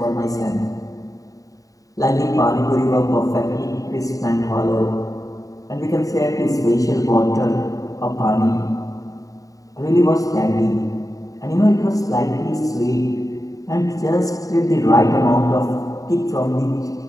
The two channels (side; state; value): right; late; 0.16 ms